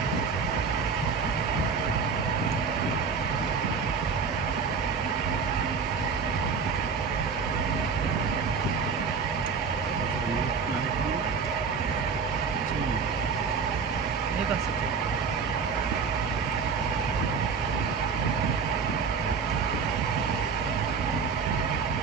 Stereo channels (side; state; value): left; quieter; 5.6 dB